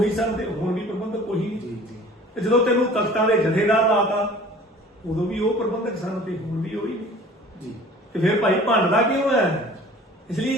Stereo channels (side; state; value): both; normal; correlation 0.47